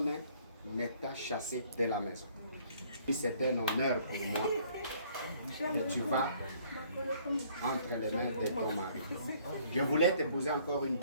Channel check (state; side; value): inverted; both; correlation -0.61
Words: ne t'a chassé de la maison. C'est un honneur pour moi que tu vas entre les mains de ton mari. Je voulais te poser encore une